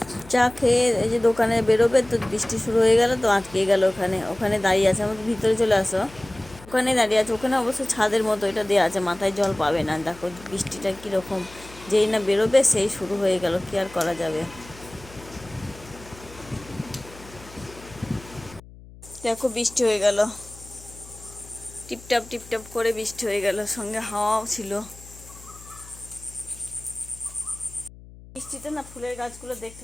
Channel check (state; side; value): noise; left; hum, 20 dB below the sound